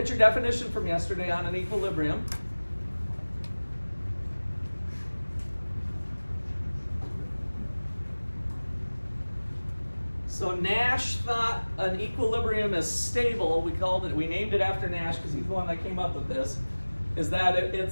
your definition from yesterday on an equilibrium. So Nash thought an equilibrium is stable. We named it after Nash because he's the one that came up with this. Is that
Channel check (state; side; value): inverted; both; correlation -1.00